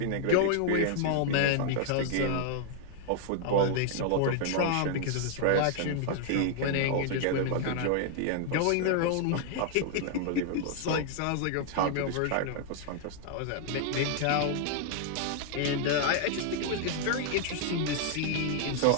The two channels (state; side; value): different; both; correlation 0.00